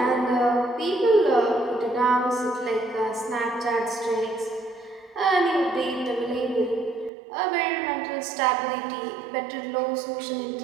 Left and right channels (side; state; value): left; drops out; at 7.1 s